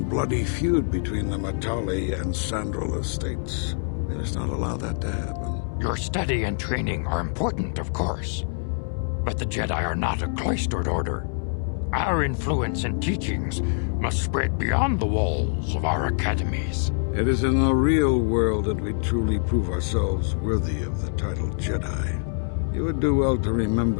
bloody feud between the Matali and Sandral estates. We must not allow that to happen. Your study and training are important, of course, but the Jedi are not a cloistered order. Our influence and teachings must spread beyond the walls of our academies. It is in the real world that we truly prove ourselves worthy of the title Jedi. You would do well to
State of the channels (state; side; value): silent; right; digital silence